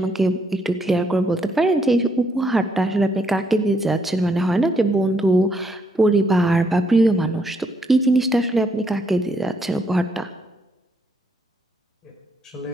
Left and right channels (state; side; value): normal; both; correlation 0.73